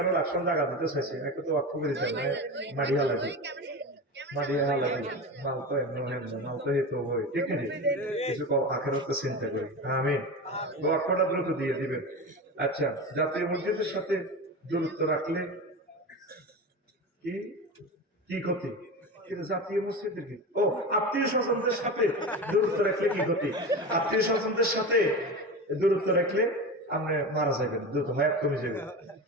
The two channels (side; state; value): both; normal; correlation 0.25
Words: রাষ্ট্র জায়গা দিতে চাইছি, একটু তো বাক্য করে দিতে মাড়িয়া লাগে মারিয়া লাগে মাল তো এমন মাল তো হেতু হয়, ঠিক আছে? কিছু আখেরাতে চিন্তা করি। আমি বাক্যটা দ্রুত দিয়ে দিবেন। আচ্ছা, জাতীয় মসজিদের সাথে দূরত্ব রাখলে কি কি ক্ষতি? কিন্তু জাতীয় মসজিদের কি ও আত্মীয় স্বজনদের সাথে দূরত্ব রাখলে কি ক্ষতি? আত্মীয় স্বজনদের সাথে দূরত্ব রাখলে আপনি মারা যাবেন, দ্রুত হায়াত কমে যাবে,